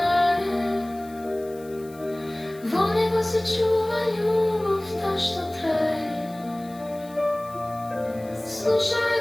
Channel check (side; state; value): left; noise; hiss, 24 dB below the sound